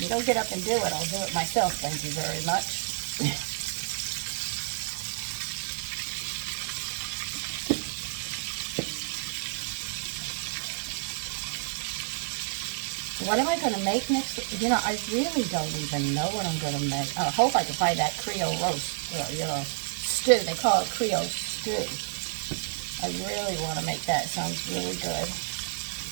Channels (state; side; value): silent; left; digital silence